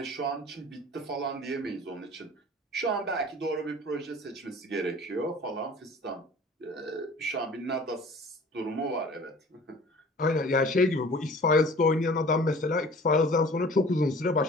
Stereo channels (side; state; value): both; normal; correlation 0.46